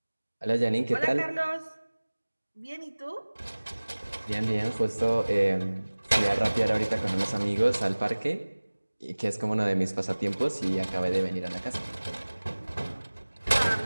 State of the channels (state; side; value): inverted; both; correlation -1.00